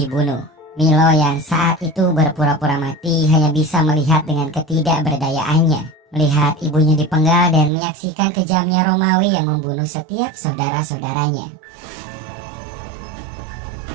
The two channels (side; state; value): left; drops out; at 7.7 s